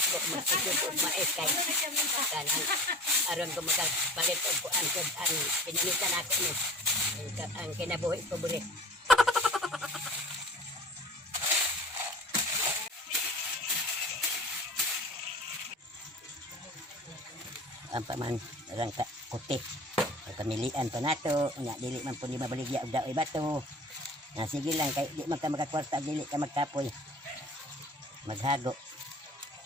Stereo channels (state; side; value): normal; both; correlation 0.40